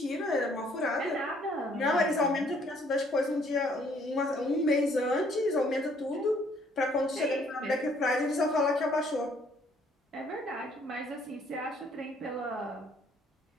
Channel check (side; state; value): both; normal; correlation 0.63